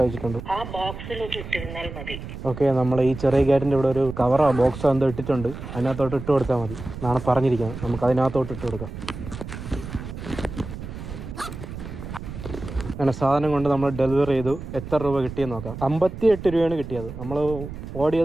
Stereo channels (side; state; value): right; noise; rumble, 10 dB below the sound